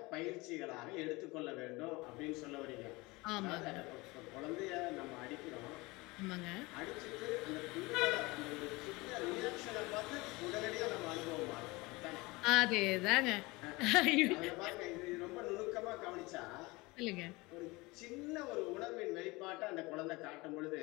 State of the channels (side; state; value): right; quieter; 23.2 dB